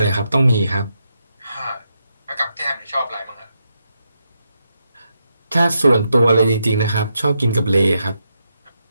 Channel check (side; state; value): both; inverted; correlation -0.83